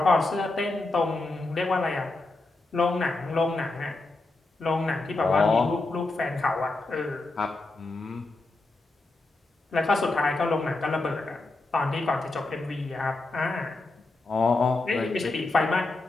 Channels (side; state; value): right; quieter; 3.2 dB